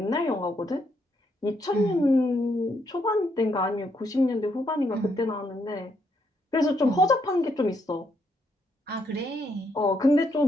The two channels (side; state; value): both; normal; correlation 0.75